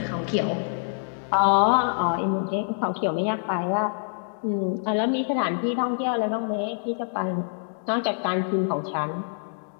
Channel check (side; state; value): right; silent; digital silence